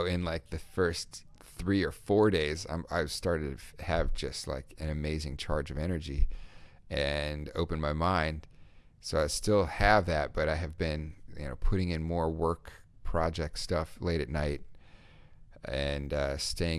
the first 3 or 4 days, I started to have just an amazing charge of energy and open my mind. So I still have that, but I have been putting in more work project stuff late at night, and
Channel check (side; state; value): both; identical; correlation 1.00